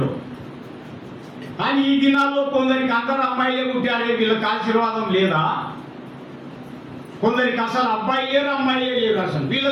కానీ ఈ దినాల్లో కొందరికి అందరు అమ్మాయిలే పుట్టారే, వీళ్ళకి ఆశీర్వాదం లేదా? కొందరికి అసలు అబ్బాయి లేరు, అమ్మాయిలే లేరు. అసలు వీళ్ళ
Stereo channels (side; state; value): both; identical; correlation 1.00